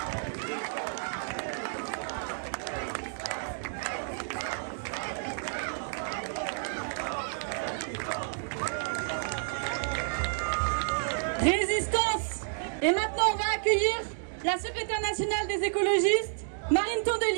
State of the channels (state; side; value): silent; left; digital silence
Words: Résistance. Et maintenant, on va accueillir la secrétaire nationale des écologistes, Marine